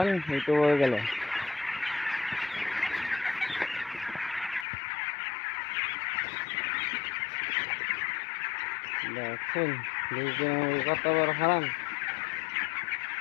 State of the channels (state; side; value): drops out; right; at 4.7 s